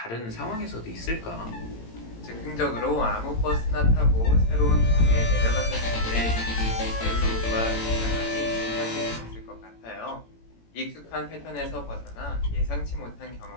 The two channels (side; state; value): right; late; 18 ms